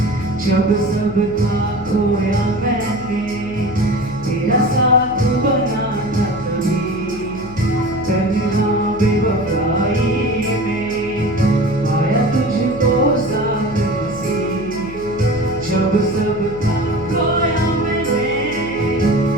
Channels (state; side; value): noise; left; hum, 15 dB below the sound